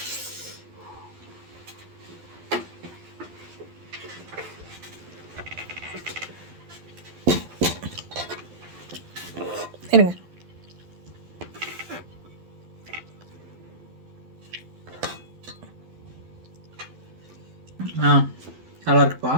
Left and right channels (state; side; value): late; left; 12 ms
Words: இருங்க. நல்லா இருக்குப்பா.